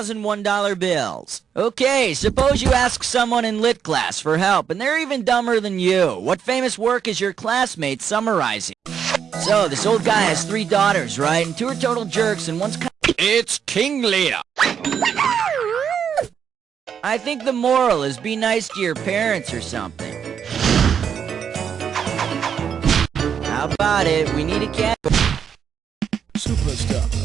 bills. Okay, suppose you ask someone in lit class for help, and they're even dumber than you. What famous work is your classmate summarizing? So, this old guy has 3 daughters, right? And 2 are total jerks, and one's kind of... It's King Lear! I think the moral is be nice to your parents or something. How about it? We need a cat. Superstar.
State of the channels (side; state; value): left; quieter; 7.8 dB